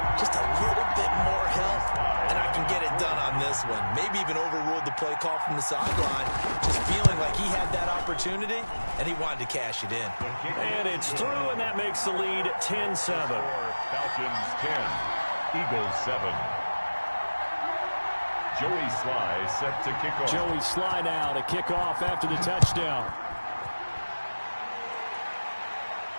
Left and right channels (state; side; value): inverted; both; correlation -1.00